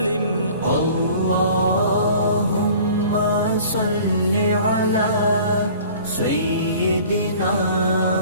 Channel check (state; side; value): inverted; both; correlation -0.47